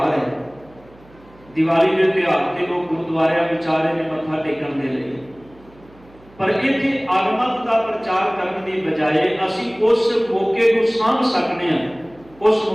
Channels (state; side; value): noise; right; hum, 26 dB below the sound